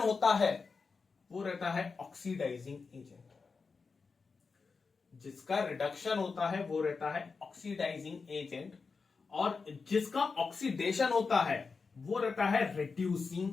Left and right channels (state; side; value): quieter; right; 4.7 dB